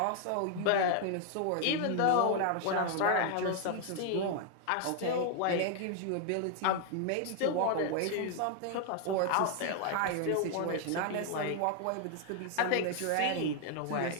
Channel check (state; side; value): different; both; correlation 0.00